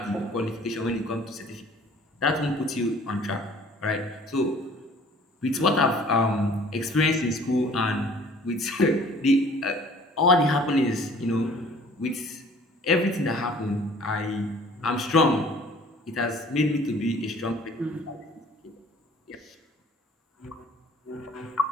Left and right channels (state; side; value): normal; both; correlation 0.52